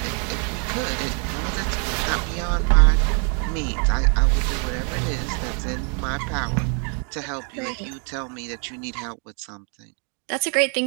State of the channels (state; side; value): quieter; left; 39.8 dB